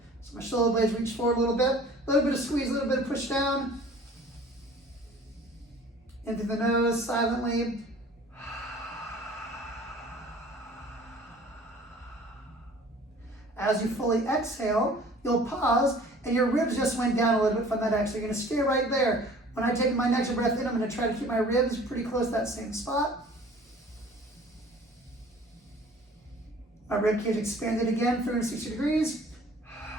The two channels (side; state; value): both; normal; correlation 0.49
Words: So my shoulder blades reach forward a little bit of squeeze, a little bit of push down. Into the nose, silently. As you fully exhale, you'll pause and your ribs just went down a little bit from that exhale. You're gonna stay right there. When I take my next breath in, I'm gonna try to keep my ribs pretty close to that same spot. My rib cage expanded again, 360 degrees.